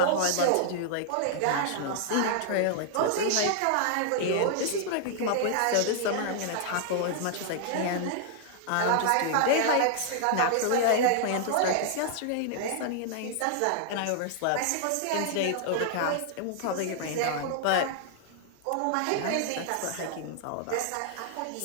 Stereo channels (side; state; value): both; different; correlation -0.01